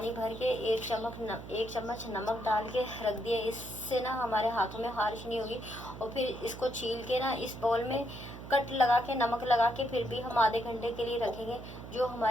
भर के एक चम्मच नमक डाल के रख दिया, इससे ना हमारे हाथों में खारिश नहीं होगी। और फिर इसको छील के ना इस बाउल में कट लगा के नमक लगा के फिर भी हम आधे घंटे के लिए रखेंगे। जो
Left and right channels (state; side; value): noise; right; hum, 12 dB below the sound